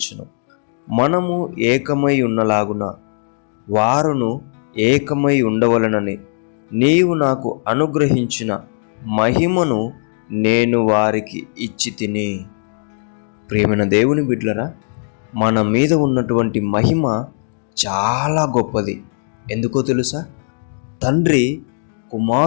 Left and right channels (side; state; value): right; silent; digital silence